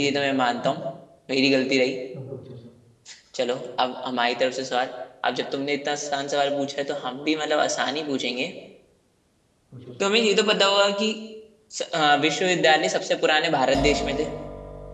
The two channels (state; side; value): identical; both; correlation 1.00